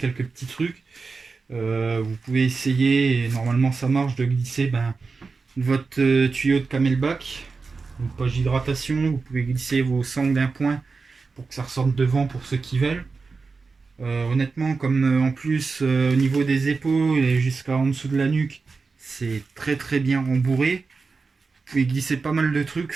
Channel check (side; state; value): left; quieter; 4.4 dB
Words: petits trucs. Vous pouvez essayer, et normalement ça marche, de glisser votre tuyau de camelback, une poche d'hydratation. Vous pouvez glisser vos sangles d'un point pour que ça ressorte devant pour ceux qui veulent. Honnêtement, comme en plus au niveau des épaules et jusqu'à en dessous de la nuque, c'est très très bien rembourré. Vous pouvez glisser pas mal de trucs,